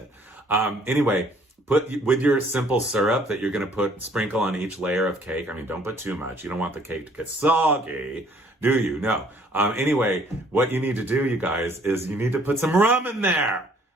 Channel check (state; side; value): normal; both; correlation 0.60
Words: Anyway, put with your simple syrup that you're going to sprinkle on each layer of cake. I mean, don't put too much. You don't want the cake to get soggy, do you? No. Anyway, what you need to do, you guys, is you need to put some rum in there.